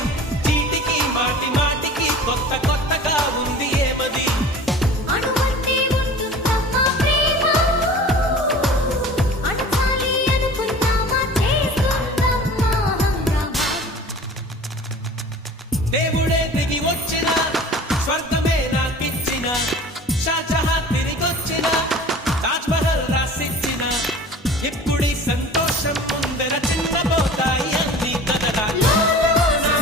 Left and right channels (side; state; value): both; normal; correlation 0.42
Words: చీటికి మాటి మాటికి కొత్త కొత్తగా ఉంది ఏమది దేవుడే దిగి వచ్చే